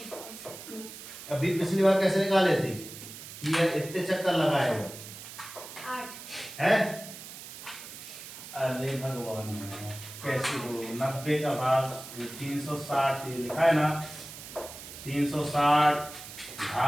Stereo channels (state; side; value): noise; right; hiss, 13 dB below the sound